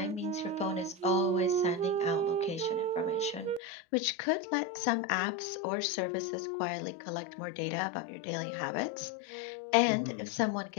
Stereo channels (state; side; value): drops out; right; at 3.6 s